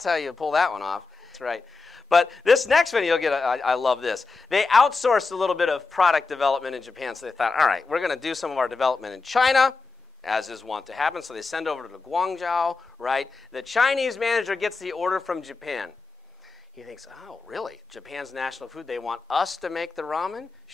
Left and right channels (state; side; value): quieter; right; 4.2 dB